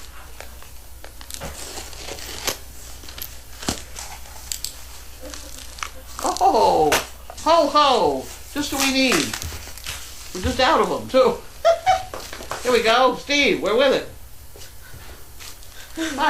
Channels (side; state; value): both; identical; correlation 1.00